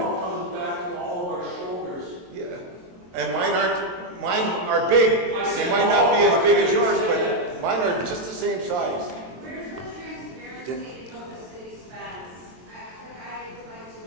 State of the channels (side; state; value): left; late; 22 ms